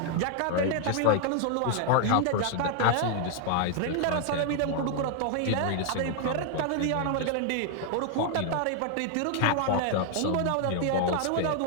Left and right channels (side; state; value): both; different; correlation 0.00